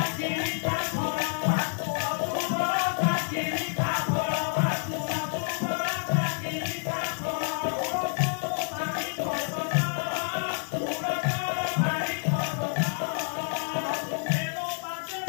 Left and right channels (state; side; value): silent; right; 59 dB below the other